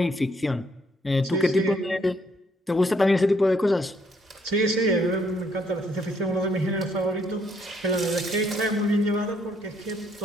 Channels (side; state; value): both; normal; correlation 0.69